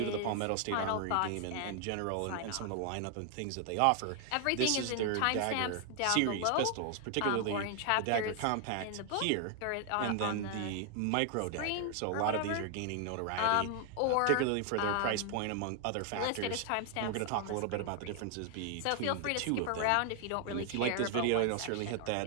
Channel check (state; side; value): different; both; correlation 0.00